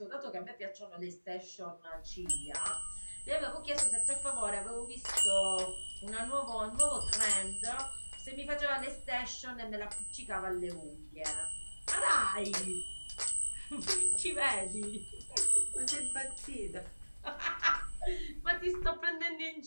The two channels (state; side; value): inverted; both; correlation -1.00